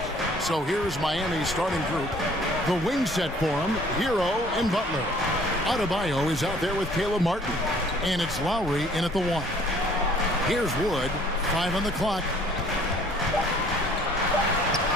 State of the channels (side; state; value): both; normal; correlation 0.56